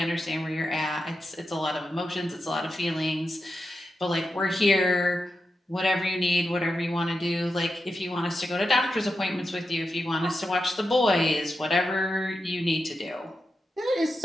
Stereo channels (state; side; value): normal; both; correlation 0.89